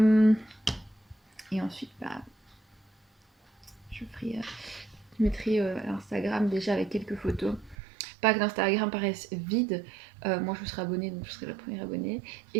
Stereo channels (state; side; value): drops out; left; at 7.8 s